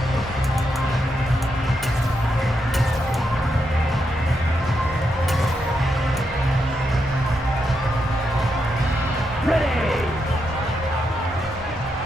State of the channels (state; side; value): normal; both; correlation 0.82